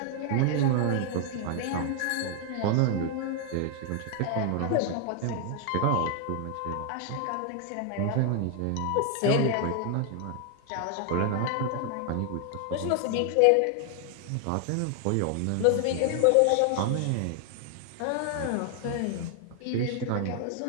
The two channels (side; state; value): both; different; correlation 0.00